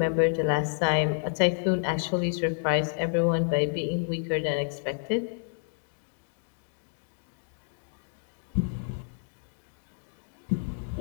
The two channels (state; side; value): silent; right; digital silence